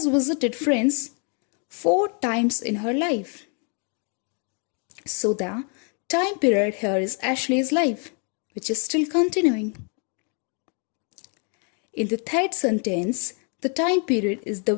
visited friends 4 times in her life. So the time period here is Ashley's life, which is still continuing. In the third sentence, the time period is the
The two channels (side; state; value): right; quieter; 39.1 dB